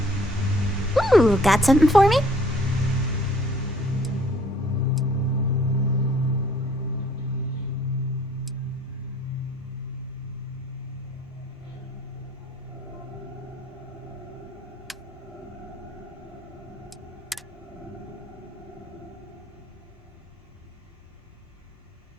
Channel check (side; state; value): both; normal; correlation 0.59